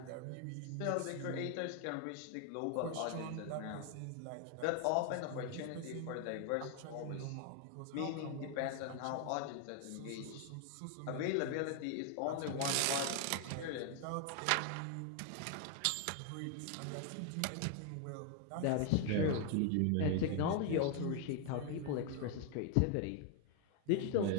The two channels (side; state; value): both; different; correlation 0.01